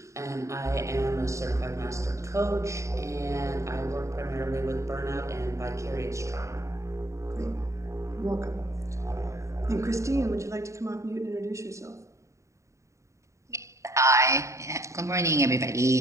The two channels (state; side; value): late; left; 0.14 ms